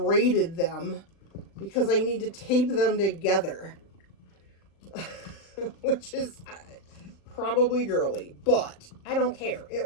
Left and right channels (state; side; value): late; right; 38 ms